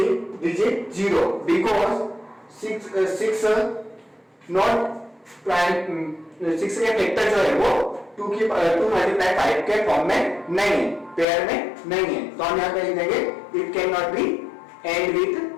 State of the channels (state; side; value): drops out; right; at 11.2 s